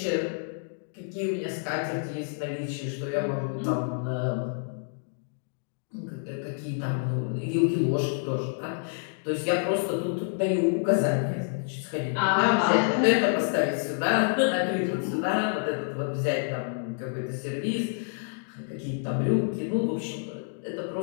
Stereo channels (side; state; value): right; silent; digital silence